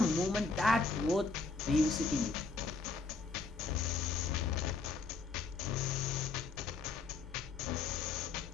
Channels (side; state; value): right; quieter; 4.2 dB